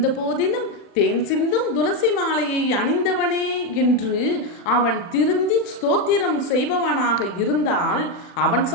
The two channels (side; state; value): right; late; 40 ms